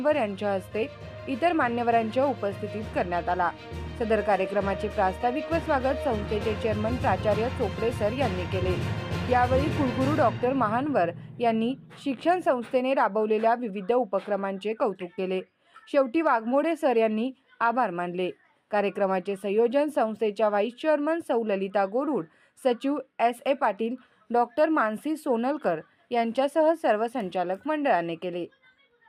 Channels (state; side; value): identical; both; correlation 1.00